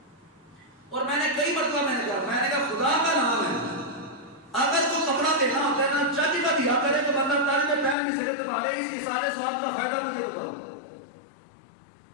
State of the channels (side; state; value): right; drops out; at 8.0 s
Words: اور میں نے کئی مرتبہ میں نے کہا خدا کا نام ہے، اگر کوئی کپڑا دینا ہوتا ہے نا چاچی کا دیا کرے تو بندہ تاج میں پہن نہیں سکے، تمہارے اس سارے سواب کا فائدہ مجھے بتاؤ۔